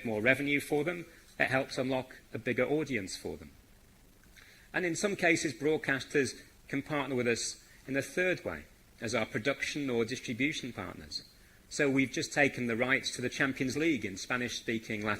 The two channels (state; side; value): identical; both; correlation 1.00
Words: more revenue for them. It helps unlock a bigger audience for them. And in some cases, broadcasters can partner with us in a third way, as our production or distribution partners. So we've just taken the rights to the Champions League in Spanish-speaking